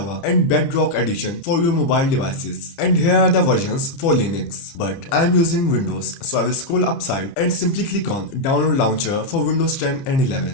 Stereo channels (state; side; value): late; right; 30 ms